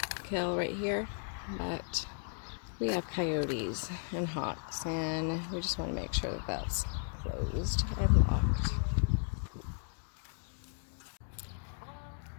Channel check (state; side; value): silent; right; 54 dB below the other